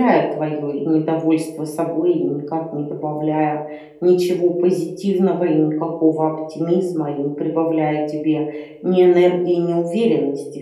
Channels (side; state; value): both; identical; correlation 1.00